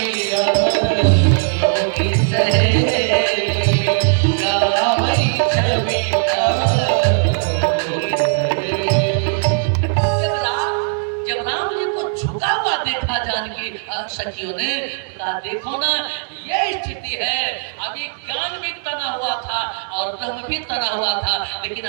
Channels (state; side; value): silent; left; digital silence